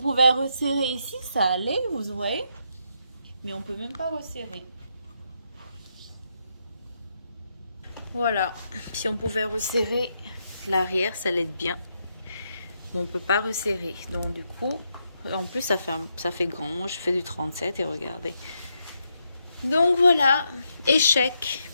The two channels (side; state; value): both; inverted; correlation -0.80